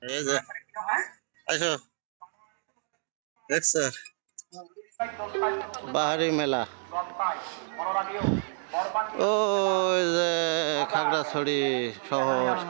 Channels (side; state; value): left; silent; digital silence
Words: এই যে আইসো দেখছো বাহারি মেলা, ওই যে খাগড়াছড়ি শহর,